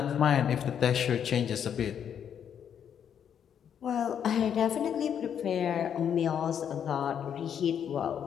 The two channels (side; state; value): right; quieter; 8.5 dB